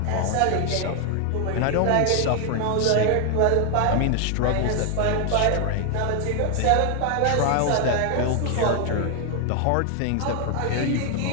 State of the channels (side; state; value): both; different; correlation 0.00